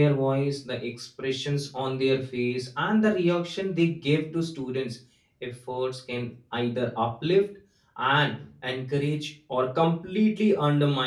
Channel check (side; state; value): both; identical; correlation 1.00